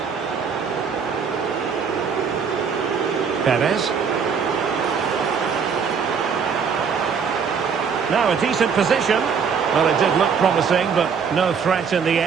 Perez. Now a decent position. Well, it did look promising, but no threat in the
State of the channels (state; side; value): quieter; left; 6.3 dB